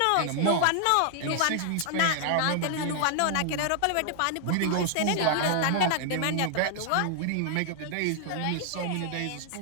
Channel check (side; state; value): both; different; correlation 0.00